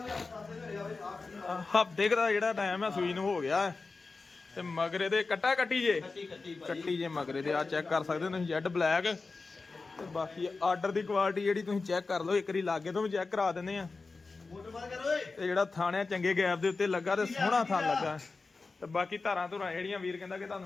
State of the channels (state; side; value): quieter; right; 4.0 dB